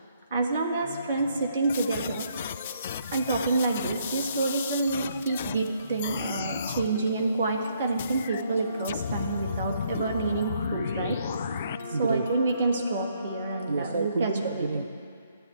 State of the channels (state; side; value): inverted; both; correlation -0.70